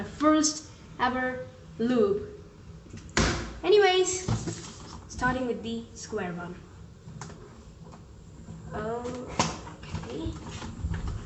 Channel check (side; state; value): both; identical; correlation 1.00